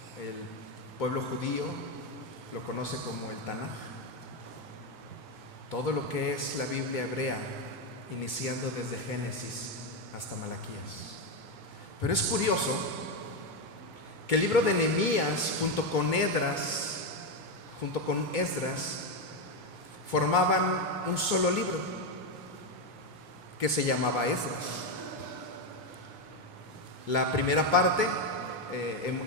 El pueblo judío lo conoce como el Tanaj. Todo lo que es la Biblia hebrea, iniciando desde Génesis hasta Malaquías. Pero es curioso que el libro de Nehemías junto con Esdras formaban un solo libro que se llamaba Esdras. La primera parte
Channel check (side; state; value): right; late; 2.3 ms